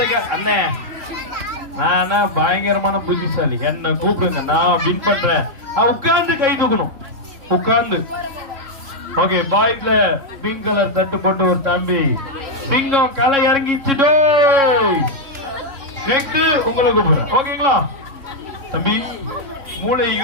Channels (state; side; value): late; left; 3.6 ms